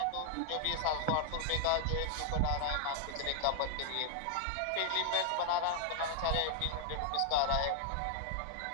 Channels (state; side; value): different; both; correlation 0.00